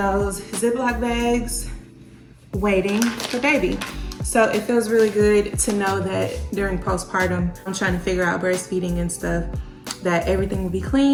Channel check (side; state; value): both; identical; correlation 1.00